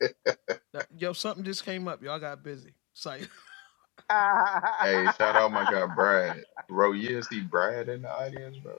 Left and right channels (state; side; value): quieter; right; 27.0 dB